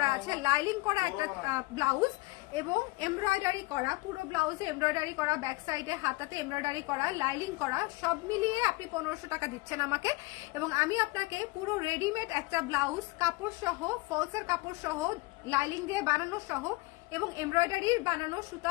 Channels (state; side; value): quieter; right; 23.2 dB